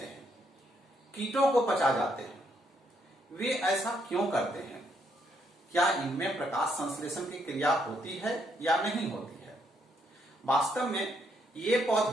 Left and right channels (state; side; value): normal; both; correlation 0.74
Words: हैं, कीटों को पचा जाते हैं। वे ऐसा क्यों करते हैं? क्या इनमें प्रकाश संश्लेषण की क्रिया होती है या नहीं होती है? वास्तव में ये